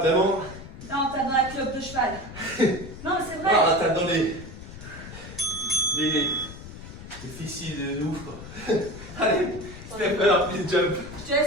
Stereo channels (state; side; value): noise; left; rumble, 13 dB below the sound